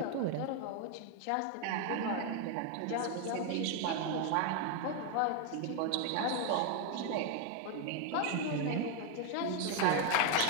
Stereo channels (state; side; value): different; both; correlation 0.01